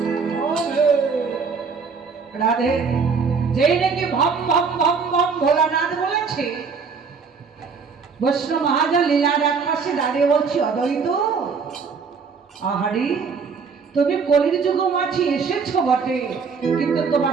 রাধে। যেই নাকি ভম ভম ভম ভম ভোলানাথ বলেছে, বৈষ্ণব মহাজন লীলার এক পাশে দাঁড়িয়ে বলছি, অদ্বৈত আহারি, তুমি কলির যুগ মাঝি এসেছো বটে, কিন্তু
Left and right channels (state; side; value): quieter; left; 5.4 dB